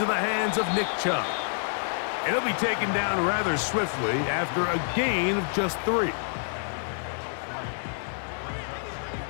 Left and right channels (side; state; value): right; silent; digital silence